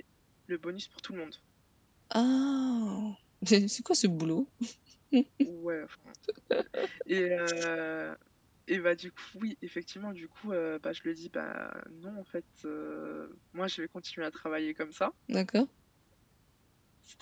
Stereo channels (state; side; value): identical; both; correlation 1.00